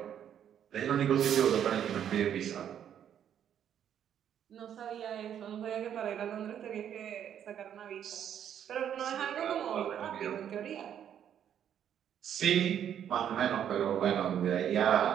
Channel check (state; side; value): quieter; left; 9.5 dB